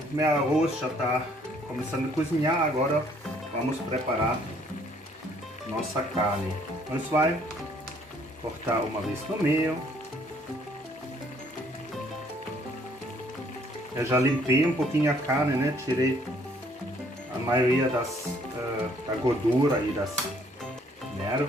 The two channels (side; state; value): both; normal; correlation 0.63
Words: meu arroz já está começando a cozinhar, agora vamos preparar nossa carne. Nós vamos cortar uma vez no meio. Eu já limpei um pouquinho a carne, né? Tirei a maioria da gordura e das